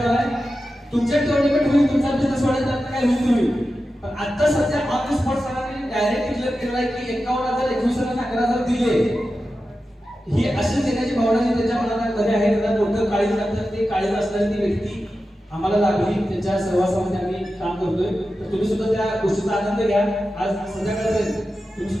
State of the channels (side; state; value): both; normal; correlation 0.92